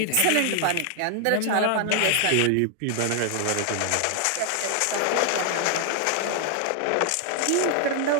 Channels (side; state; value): both; different; correlation 0.00